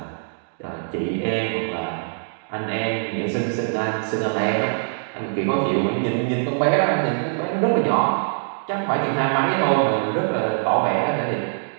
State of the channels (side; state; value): left; silent; digital silence